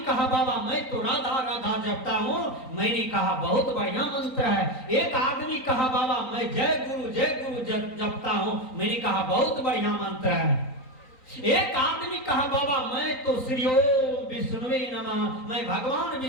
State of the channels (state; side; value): late; right; 3.9 ms